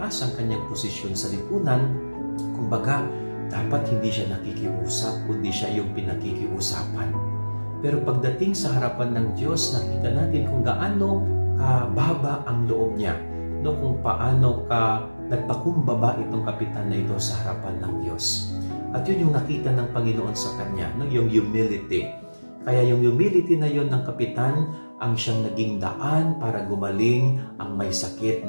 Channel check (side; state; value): both; inverted; correlation -1.00